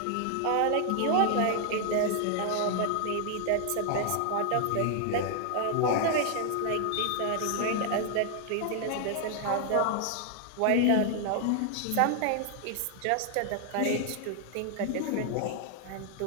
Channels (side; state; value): both; different; correlation 0.00